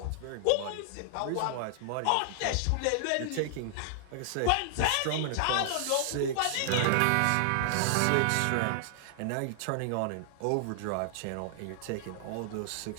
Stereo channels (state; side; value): different; both; correlation -0.01